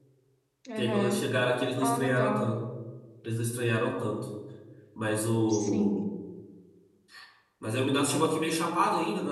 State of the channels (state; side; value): identical; both; correlation 1.00